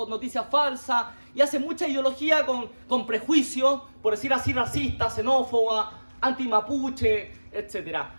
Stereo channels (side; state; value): both; inverted; correlation -1.00